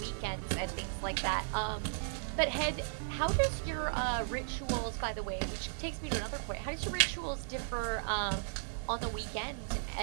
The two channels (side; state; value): left; silent; 54 dB below the other